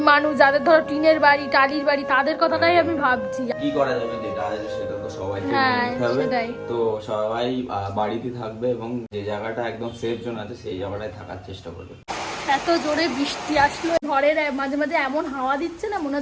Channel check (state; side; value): identical; both; correlation 1.00